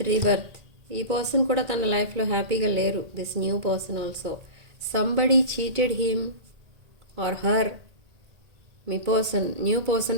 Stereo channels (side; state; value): left; late; 1.8 ms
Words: rebirth. ఈ పర్సన్ కూడా తన లైఫ్లో హ్యాపీగా లేరు. This new person also somebody cheated him or her. మీ పర్సన్, న్యూ